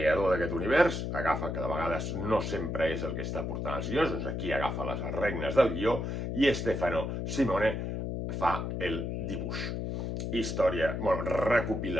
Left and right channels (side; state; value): left; noise; hum, 3 dB below the sound